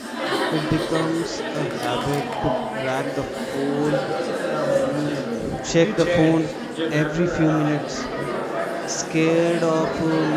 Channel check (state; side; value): identical; both; correlation 1.00